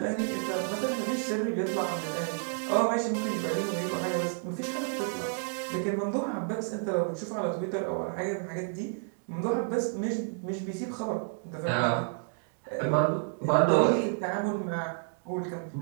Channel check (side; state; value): left; silent; 58 dB below the other